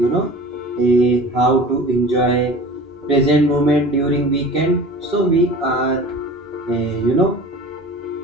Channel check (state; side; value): normal; both; correlation 0.39